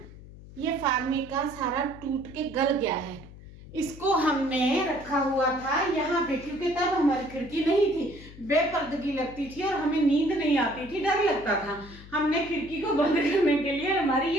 ये फार्मिका सारा टूट के गल गया है। इसको हमने रखा हुआ था यहाँ पे क्योंकि तब हमारी खिड़की नहीं थी, बेपर्दगी लगती थी और हमें नींद नहीं आती थी, डर लगता था। हमने खिड़की को बंद करने के लिए हमारी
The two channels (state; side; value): noise; left; hum, 18 dB below the sound